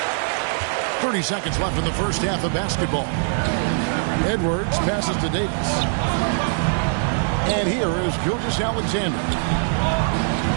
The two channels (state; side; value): silent; left; 61 dB below the other